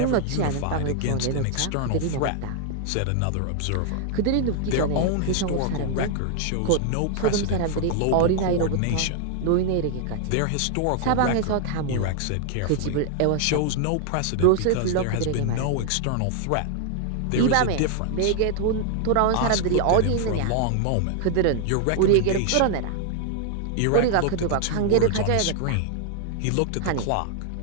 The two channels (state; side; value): different; both; correlation 0.00